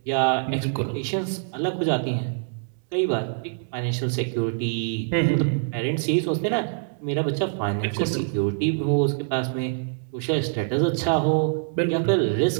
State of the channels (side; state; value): left; silent; 62 dB below the other